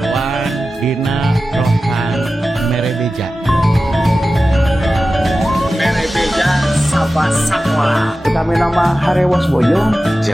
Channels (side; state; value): both; normal; correlation 0.94